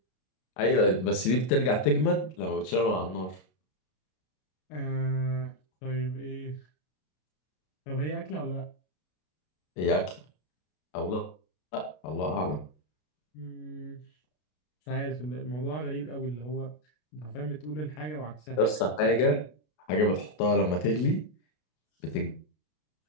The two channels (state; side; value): late; right; 33 ms